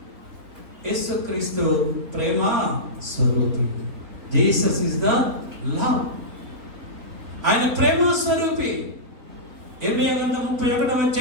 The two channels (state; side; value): late; left; 3.7 ms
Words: యేసుక్రీస్తు ప్రేమ స్వరూపి. Jesus is the love. ఆయన ప్రేమ స్వరూపి. యెర్మీయా గ్రంథం